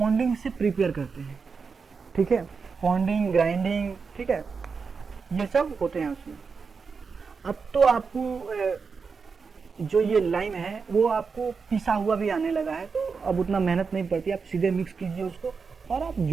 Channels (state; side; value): quieter; left; 5.2 dB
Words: से प्रिपेयर करते हैं, ठीक है, पॉन्डिंग, ग्राइंडिंग, ठीक है, ये सब होते हैं उसमें। अब तो आपको जो ये लाइम है वो आपको पिसा हुआ भी आने लगा है, तो अब उतना मेहनत नहीं पड़ती, आप सीधे मिक्स कीजिए उसको और आप